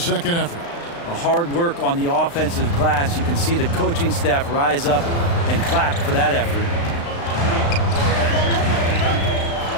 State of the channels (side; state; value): right; late; 35 ms